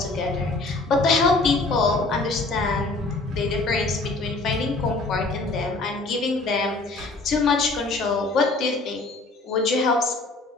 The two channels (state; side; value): quieter; right; 3.3 dB